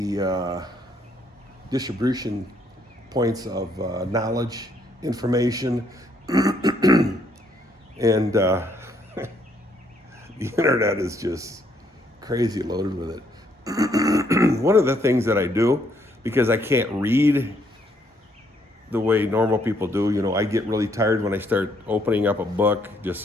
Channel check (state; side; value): normal; both; correlation 0.70